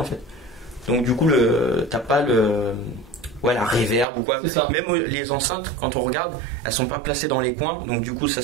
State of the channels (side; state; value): left; drops out; at 4.0 s